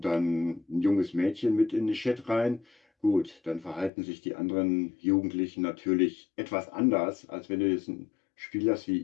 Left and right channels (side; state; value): right; drops out; at 3.9 s